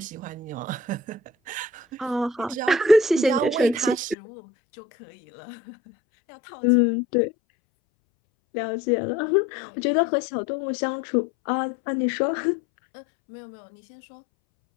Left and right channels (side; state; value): right; drops out; at 4.2 s